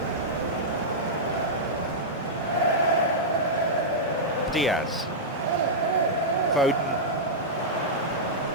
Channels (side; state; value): both; normal; correlation -0.10